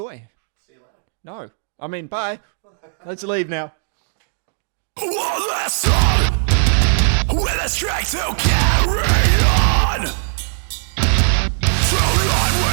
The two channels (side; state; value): left; silent; digital silence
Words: See you later. No, I mean bye. Let's leave now. One last song with a strength to carry on. Tonight we